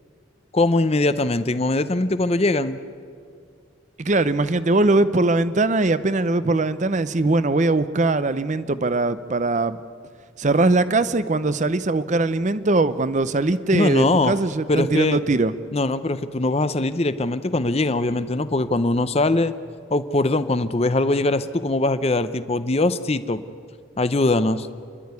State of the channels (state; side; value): normal; both; correlation 0.50